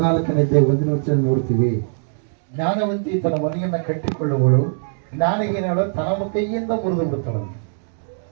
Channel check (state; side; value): silent; left; digital silence